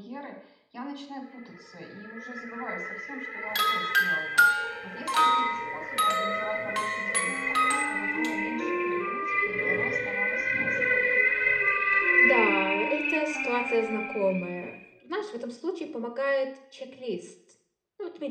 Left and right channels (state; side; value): identical; both; correlation 1.00